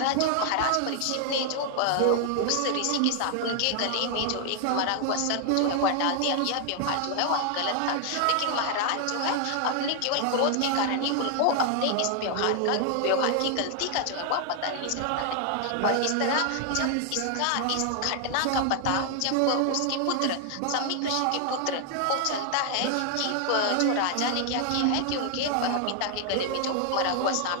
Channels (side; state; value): both; different; correlation 0.00